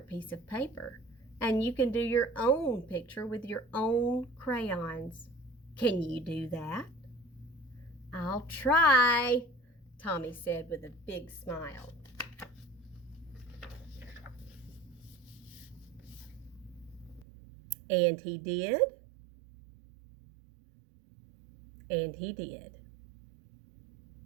piece of paper, and you can do your own picture with your own crayons. Can you do that?" "I'll try," Tommy said with a big smile. And he did. And he did.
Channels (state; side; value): drops out; left; at 17.2 s